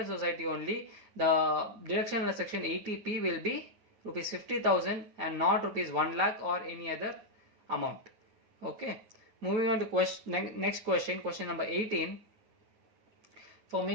society only, the deduction under section 80P will be rupees 50,000 and not rupees 1 lakh or any other amount. Okay. Moving on to next question, question number 18. For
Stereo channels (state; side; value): late; left; 9.1 ms